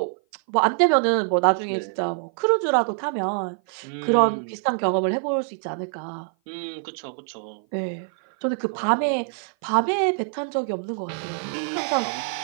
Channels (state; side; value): silent; left; 56 dB below the other